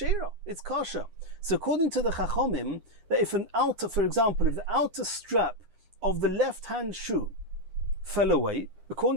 It's kosher. So according to the Chachomim, that if for example, if the outer strap of the left-hand shoe fell away,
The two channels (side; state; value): left; late; 9.6 ms